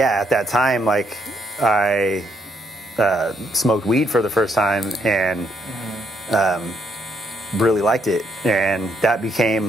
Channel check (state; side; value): normal; both; correlation 0.73